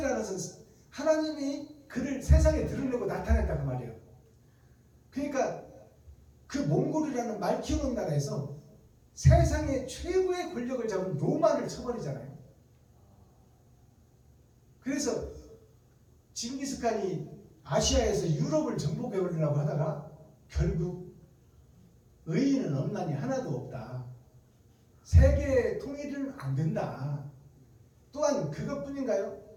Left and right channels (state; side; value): identical; both; correlation 1.00